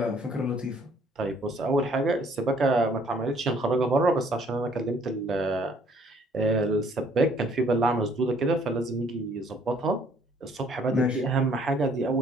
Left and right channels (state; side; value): normal; both; correlation 0.62